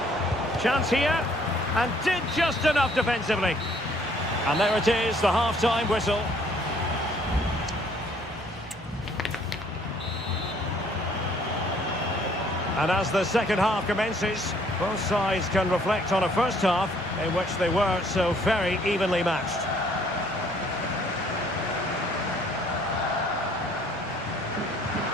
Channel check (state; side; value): normal; both; correlation 0.61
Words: Chance here. And did just enough defensively. And there it is, the half-time whistle. And as the second half commences, both sides can reflect on a first half in which they were so very evenly matched.